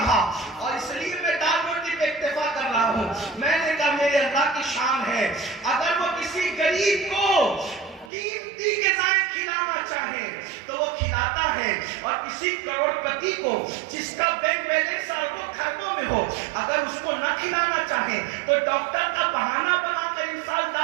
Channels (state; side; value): drops out; left; at 8.1 s